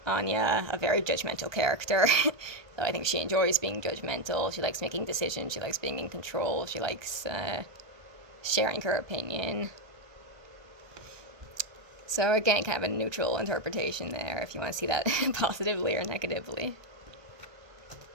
Anya, a very judgmental character. So I think she enjoys being judgmental. She likes making decisions. She likes being in control. She likes sharing her opinion. So again, kind of a neutral interpretation there, if you want to see that positively or negatively.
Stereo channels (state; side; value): late; left; 1.2 ms